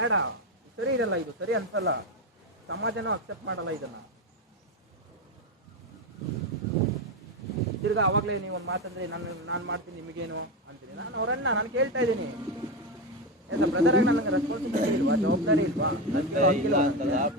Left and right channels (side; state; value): both; normal; correlation 0.14